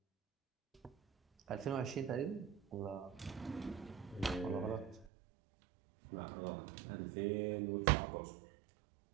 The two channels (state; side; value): drops out; left; at 5.1 s